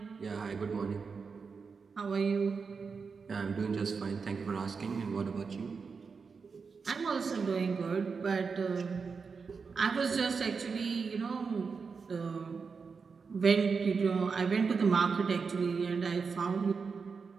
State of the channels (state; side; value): quieter; left; 5.2 dB